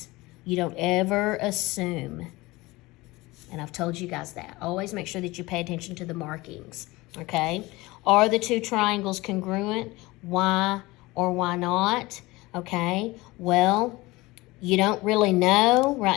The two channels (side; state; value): right; quieter; 21.1 dB